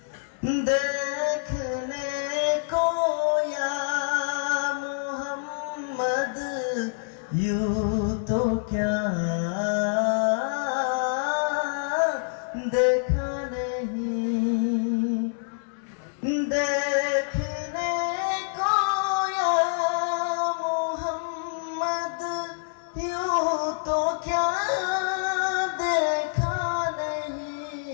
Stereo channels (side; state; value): right; silent; digital silence